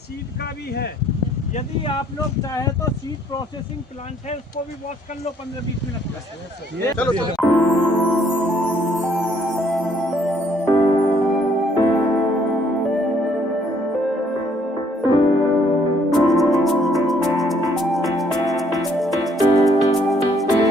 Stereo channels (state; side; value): normal; both; correlation 0.65